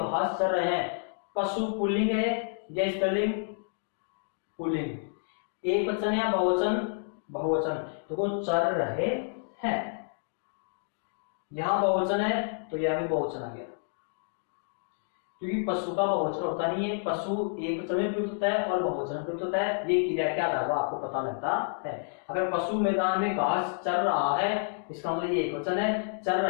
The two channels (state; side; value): silent; right; digital silence